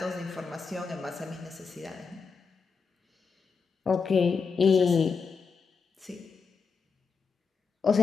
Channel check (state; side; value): quieter; right; 5.3 dB